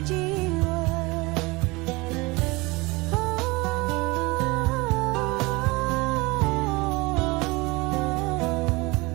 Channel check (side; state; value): left; quieter; 24.0 dB